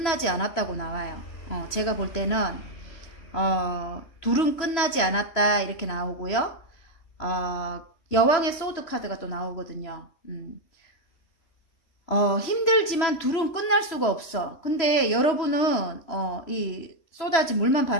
않았다고 나와요. 제가 볼 때는 둘은 끝나지 않았다 이렇게 나오고요. 여왕의 소드 카드가 또 나오거든요. 힘들지만 둘은 끝날 수가 없어. 근데 여러분은 이 쏟아진 물만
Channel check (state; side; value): late; right; 3.0 ms